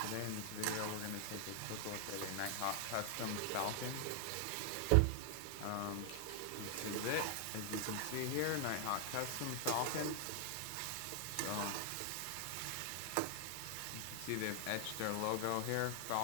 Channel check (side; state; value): both; different; correlation 0.00